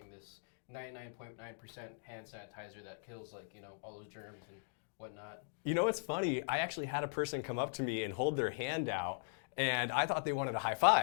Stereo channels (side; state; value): right; silent; digital silence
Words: this 99.9% hand sanitizer that kills like, all those germs and whatnot. You know what's funny? I actually had a person come up to me and hold their hand out, and I thought they wanted a high